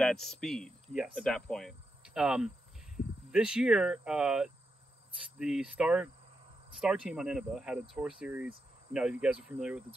speed. Yes. At that point. This year, the Star team on Innova had a tour series. You know, you guys are familiar with the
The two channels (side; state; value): both; normal; correlation 0.85